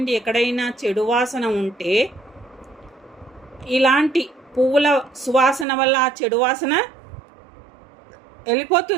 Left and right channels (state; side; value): drops out; left; at 5.7 s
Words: ఎక్కడైనా చెడు వాసన ఉంటే ఇలాంటి పువ్వుల సువాసన వల్ల ఆ చెడు వాసన